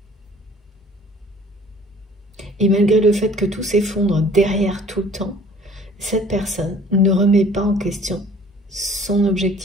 Et malgré le fait que tout s'effondre derrière tout le temps, cette personne ne remet pas en question son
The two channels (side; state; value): both; normal; correlation 0.52